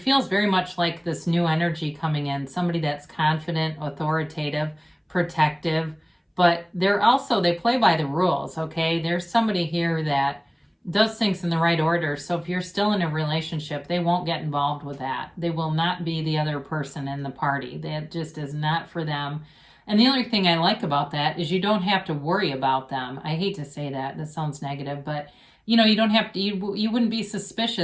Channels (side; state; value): both; identical; correlation 1.00